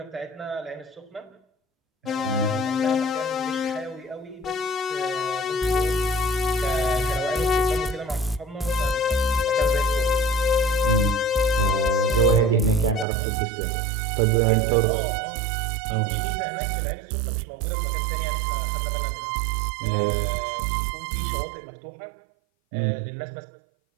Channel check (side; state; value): left; drops out; at 13.1 s